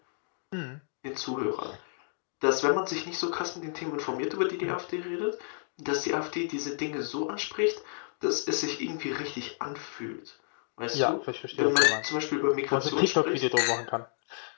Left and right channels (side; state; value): right; silent; digital silence